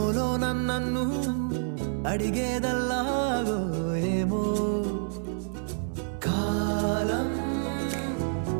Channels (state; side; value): silent; left; 59 dB below the other